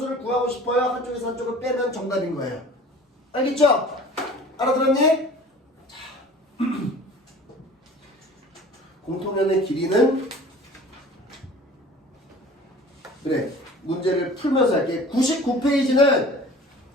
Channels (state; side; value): normal; both; correlation 0.44